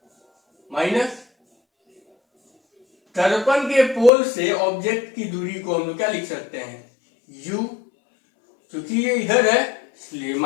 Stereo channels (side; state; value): right; drops out; at 4.1 s